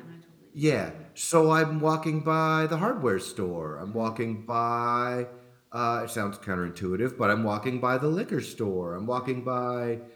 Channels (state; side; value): identical; both; correlation 1.00